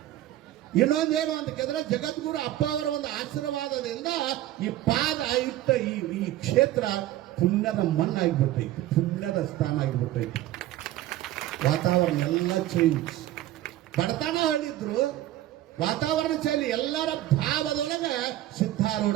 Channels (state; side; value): quieter; left; 14.3 dB